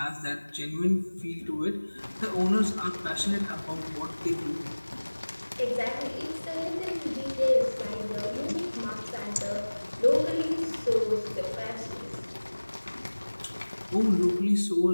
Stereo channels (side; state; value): both; inverted; correlation -1.00